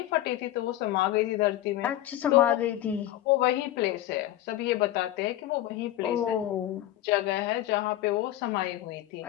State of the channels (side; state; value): right; quieter; 13.9 dB